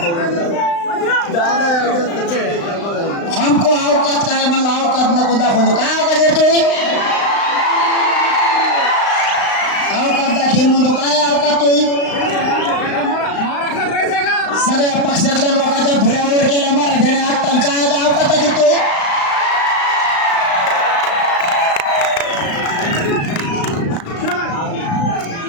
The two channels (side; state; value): right; late; 35 ms